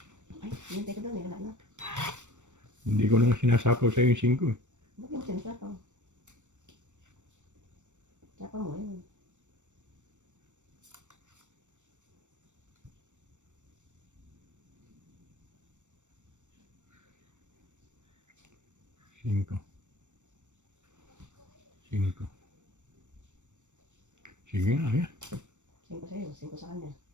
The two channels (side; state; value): left; late; 0.85 ms